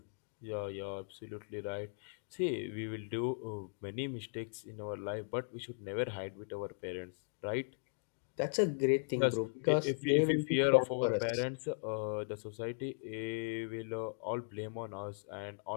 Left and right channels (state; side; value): silent; right; digital silence